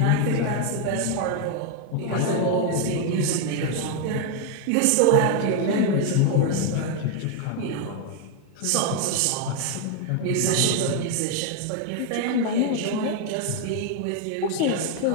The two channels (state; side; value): different; both; correlation 0.01